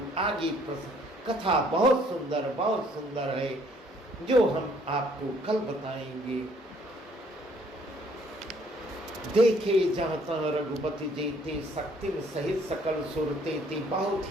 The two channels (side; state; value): both; normal; correlation 0.62